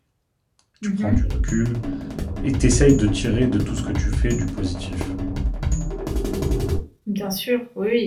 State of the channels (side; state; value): both; identical; correlation 1.00